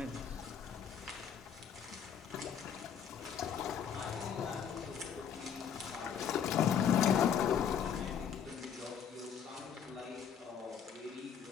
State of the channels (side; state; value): right; quieter; 7.9 dB